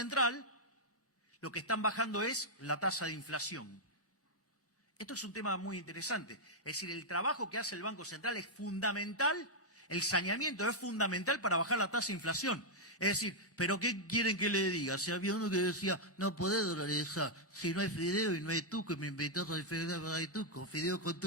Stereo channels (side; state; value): both; normal; correlation -0.04